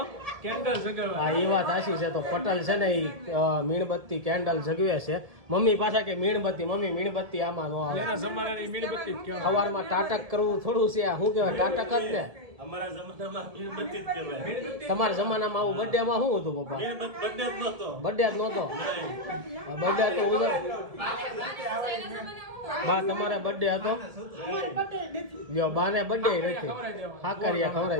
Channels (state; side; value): late; left; 1.8 ms